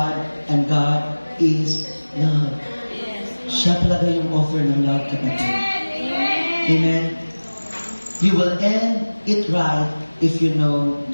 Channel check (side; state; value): both; inverted; correlation -1.00